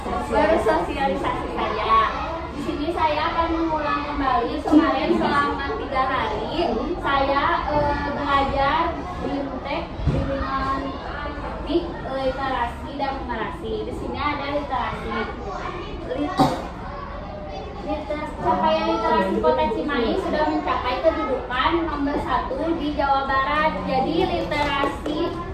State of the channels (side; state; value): both; identical; correlation 1.00